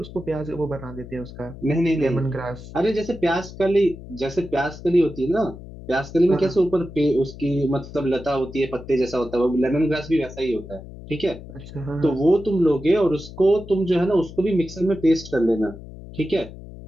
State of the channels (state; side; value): noise; left; hum, 15 dB below the sound